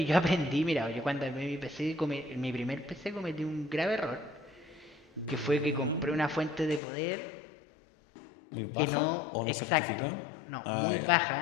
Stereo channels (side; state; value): right; drops out; at 6.8 s